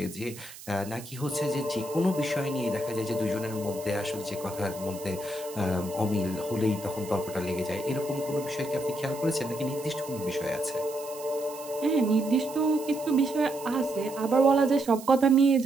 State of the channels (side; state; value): right; noise; hiss, 16 dB below the sound